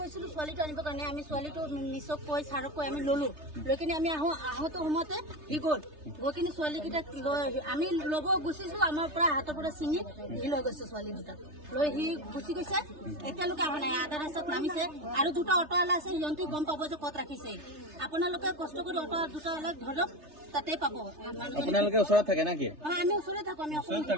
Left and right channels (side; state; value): left; late; 3.3 ms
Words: ছোৱালীটো আনিব কাৰণে আমি ছোৱালীটো মিছক কৈ ছাৰক কৈ আমি ললো লৈ কিনে আমি আহোঁতে সময়তে সি গ'ল গৈ কিনে ছোৱালীকেইটাক আমি ল'ব গুচিছো আমাৰ পৰা হাতৰ পৰা ছিঙি সি লৈ গৈছে ছোৱালী দুটাক লৈ সি গুচি গৈছে এতিয়ালৈকে অহা নাই আধা ৰাস্তাত নামিছে আৰু দুটা অটোৱালা আছে সিহঁতে গম পাব যে ক'ত ৰাখিছে আপোনালোকে কষ্ট কৰি অটো দুটা অলপ ধৰক তাতে পাব আপোনালোকে ওচৰত থাকে নেকি আমি ওচৰতে থাকো আমি